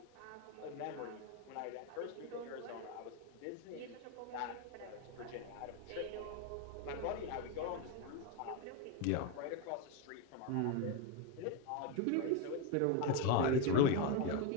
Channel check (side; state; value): both; different; correlation 0.02